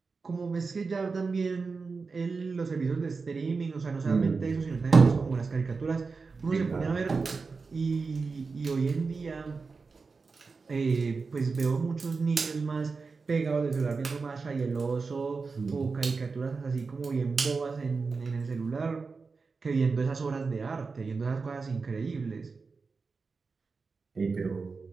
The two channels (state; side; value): quieter; left; 4.5 dB